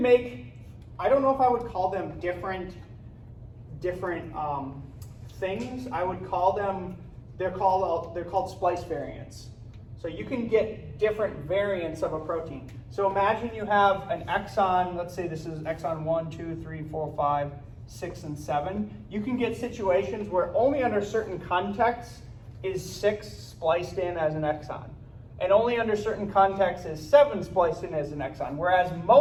make, I don't know if I would call them different things. I would call them, they're called splice variants. So you can get different variants of a protein. So imagine you have an exon, let's say this is exon 1, 2, 3, 4, 5, 6, and 7. You can get situations where only under certain contexts is 6 spliced in as an exon. And only under certain contexts is 7 spliced in as an exon. Whereas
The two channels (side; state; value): both; identical; correlation 1.00